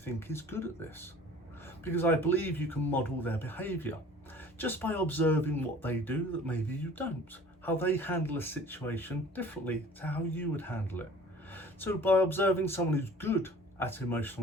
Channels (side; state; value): both; normal; correlation 0.47